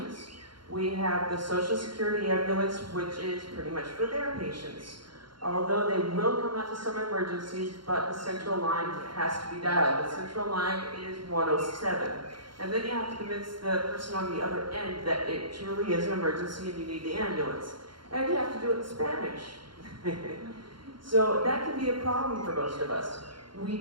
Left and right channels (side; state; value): left; late; 0.73 ms